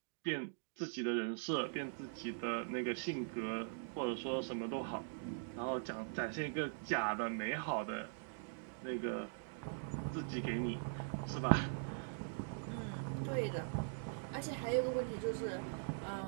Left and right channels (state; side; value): silent; left; digital silence